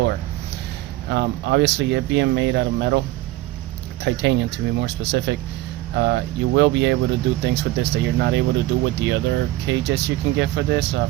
Obviously it being made out of metal, titanium to be more specific, you will be able to do things with this that you're not able to do with the other cages you can get for this.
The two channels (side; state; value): left; quieter; 16.9 dB